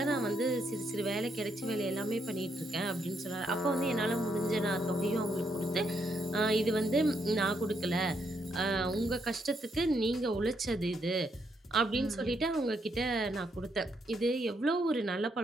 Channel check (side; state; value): both; normal; correlation 0.76